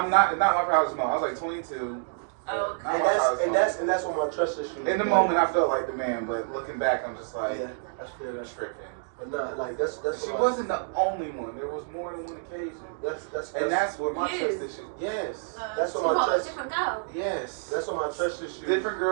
not my proudest moment. I was like 22. Oh, Not And my that's proudest and moment. that's and that's what my trust issue. In the moment, I felt like the man, but looking back, I'm just like, Yeah, that's fair. That's fair. tripping. But not like that's She what wasn't the only one. There was more than one occasion. And that's where my You. trust issue. Yes. That's So what my what? A trust. different girl. Yes. That's what my trust issue. Different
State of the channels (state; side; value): silent; left; digital silence